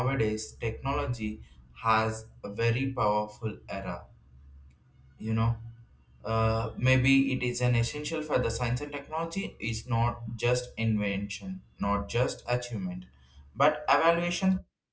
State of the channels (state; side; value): identical; both; correlation 1.00